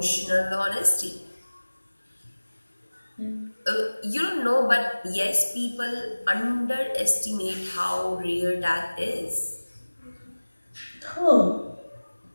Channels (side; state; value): both; inverted; correlation -1.00